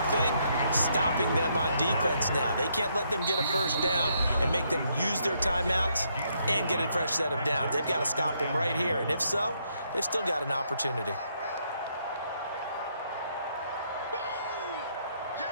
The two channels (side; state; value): both; inverted; correlation -0.74